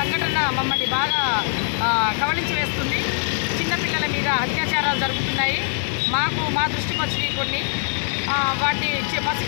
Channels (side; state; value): right; silent; digital silence